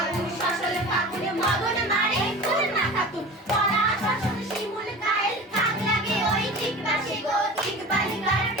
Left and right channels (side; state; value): both; normal; correlation 0.36